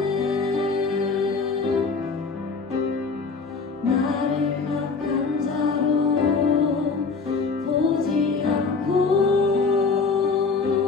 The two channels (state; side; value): quieter; right; 4.6 dB